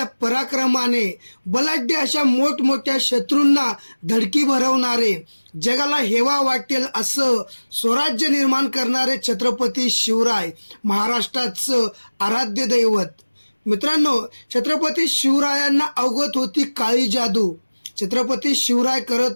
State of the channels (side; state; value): both; inverted; correlation -1.00